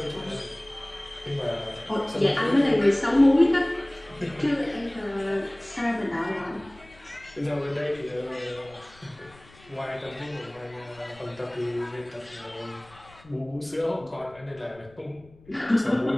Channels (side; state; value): left; noise; rumble, 25 dB below the sound